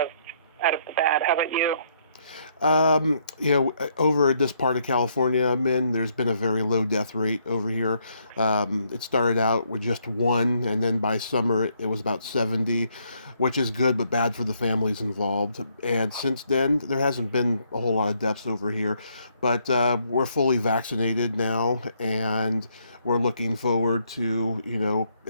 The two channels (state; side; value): inverted; both; correlation -0.72